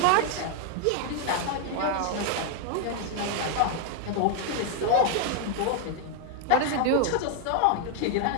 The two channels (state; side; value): different; both; correlation 0.00